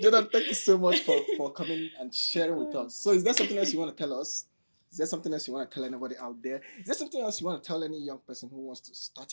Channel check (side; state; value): both; inverted; correlation -1.00